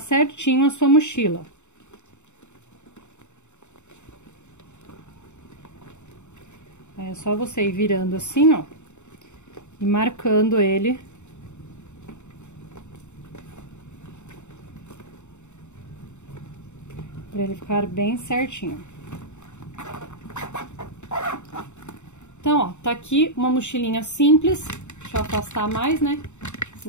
a sua mochila. Aí é só você ir virando assim, ó, e marcando ele. Pra ele ficar bem certinho. Então, ó, tá aqui uma mochilinha simples. Deixa eu afastar mais, né?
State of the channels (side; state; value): right; late; 0.83 ms